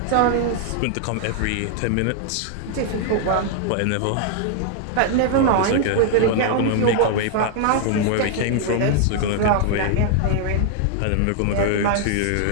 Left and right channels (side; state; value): both; different; correlation 0.00